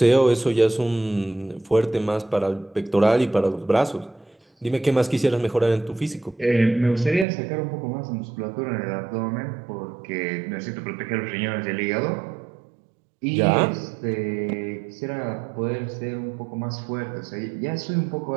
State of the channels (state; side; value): drops out; left; at 7.2 s